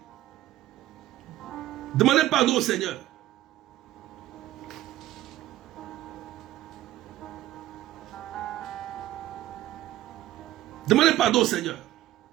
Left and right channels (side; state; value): left; quieter; 14.4 dB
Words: Demandez pardon au Seigneur. Demandez pardon au Seigneur.